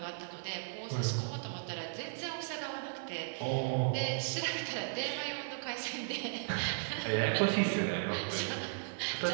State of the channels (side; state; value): left; silent; 54 dB below the other